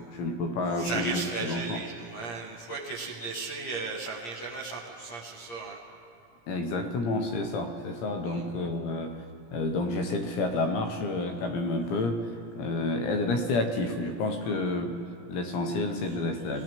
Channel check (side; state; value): right; late; 17 ms